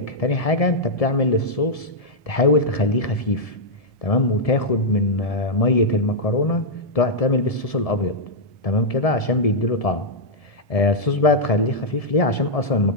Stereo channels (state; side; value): late; right; 1.7 ms